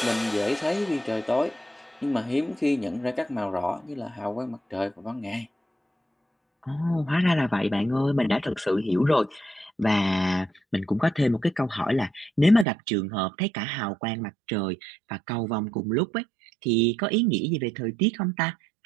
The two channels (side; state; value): left; drops out; at 12.7 s